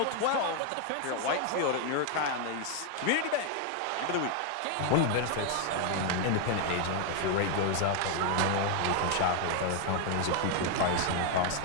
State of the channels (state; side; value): different; both; correlation 0.00